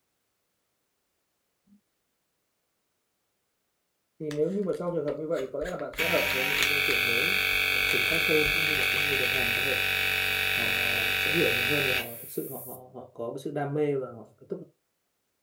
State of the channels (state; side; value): identical; both; correlation 1.00